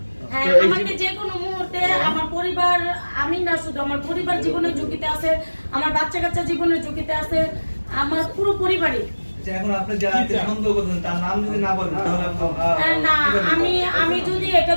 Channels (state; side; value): inverted; both; correlation -1.00